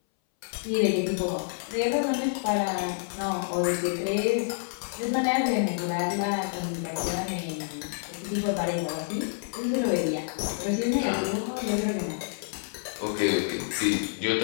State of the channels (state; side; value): silent; right; 59 dB below the other